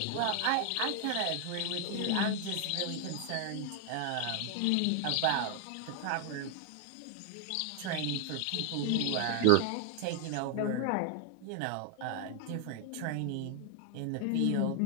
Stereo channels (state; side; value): different; both; correlation 0.00